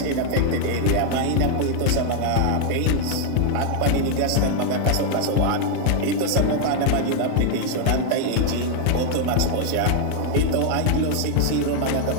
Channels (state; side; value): different; both; correlation 0.00